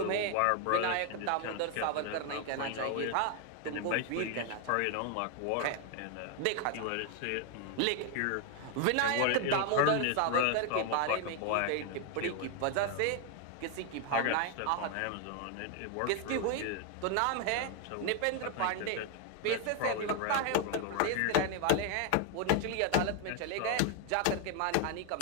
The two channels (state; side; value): different; both; correlation 0.00